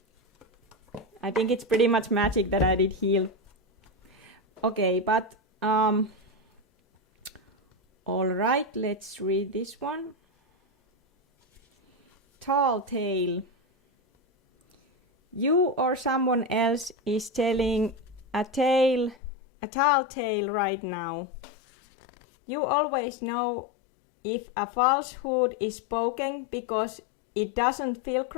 I think it's pretty much magic that I did heal. Okay, but all right, let's read this one. Tall tale. You or someone else is telling a tall tale right now. You always know if a falsehood is spoken because it doesn't feel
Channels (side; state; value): right; drops out; at 19.2 s